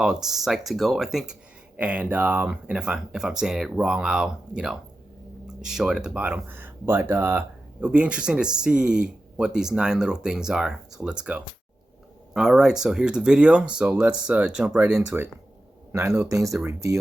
Psych to Go, I think. And if I'm saying it wrong, I'll show it at the bottom. But it'll be interesting to see what these 9 little things are. So let's go. All right, so here's the video. So let's jump right into it. 9 little things that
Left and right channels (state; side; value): normal; both; correlation 0.92